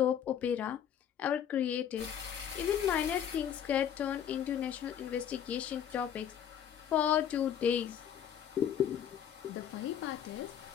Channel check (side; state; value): right; quieter; 9.3 dB